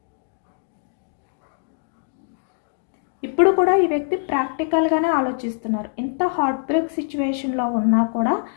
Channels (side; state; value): right; silent; digital silence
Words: ఇప్పుడు కూడా ఈ వ్యక్తి ప్రాక్టికల్గానే ఆలోచిస్తున్నారు. ఇంత హార్ట్ బ్రేక్ సిచ్యువేషన్లో ఉన్నా కూడా,